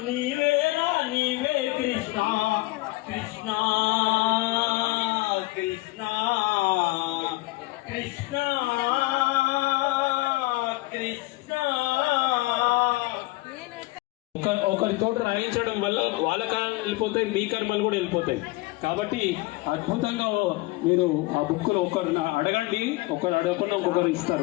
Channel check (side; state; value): right; quieter; 21.4 dB